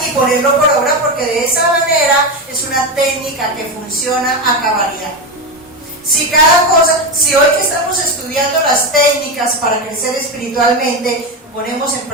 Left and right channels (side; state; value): both; normal; correlation 0.15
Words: y ponerlo por obra, porque de esa manera es una técnica que funciona a cabalidad. Si hoy que estamos estudiando las técnicas para crecer espiritualmente, ponemos en